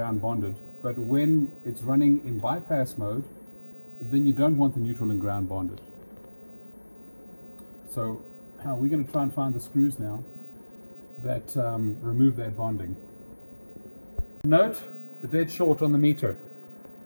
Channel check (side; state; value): both; inverted; correlation -1.00